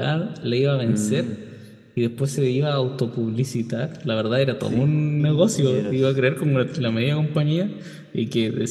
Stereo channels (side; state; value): both; identical; correlation 1.00